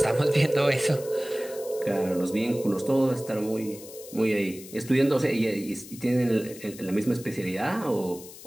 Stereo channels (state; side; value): noise; left; hiss, 16 dB below the sound